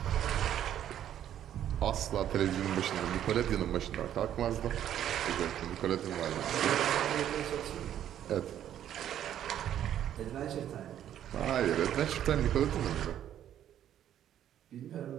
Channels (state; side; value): quieter; left; 10.8 dB